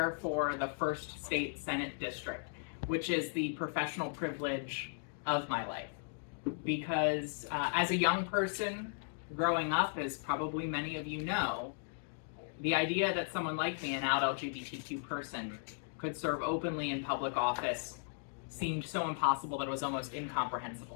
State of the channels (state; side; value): silent; right; digital silence